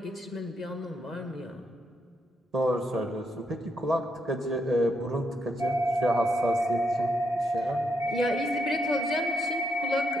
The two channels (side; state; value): both; normal; correlation 0.79